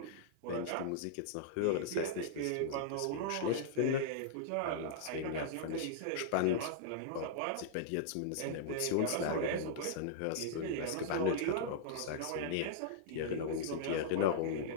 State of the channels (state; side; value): different; both; correlation -0.01